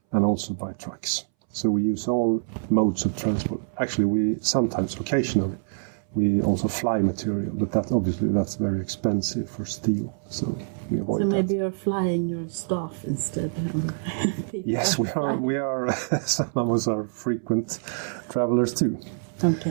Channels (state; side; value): silent; left; 61 dB below the other